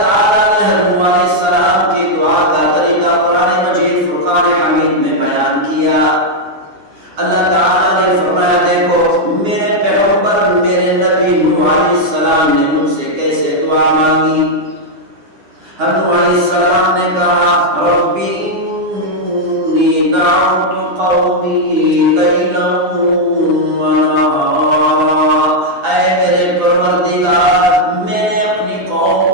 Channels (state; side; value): late; left; 9.8 ms